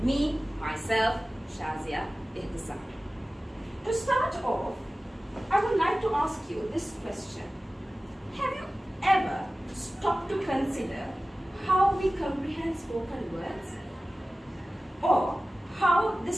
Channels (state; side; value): normal; both; correlation 0.96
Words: me, myself, Shazia Ihtisam. To start off, I would like to ask you this question. Have you ever stopped to consider how we comprehend spoken words? Or how